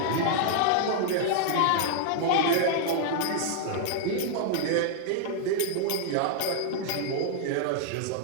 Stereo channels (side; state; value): both; different; correlation -0.01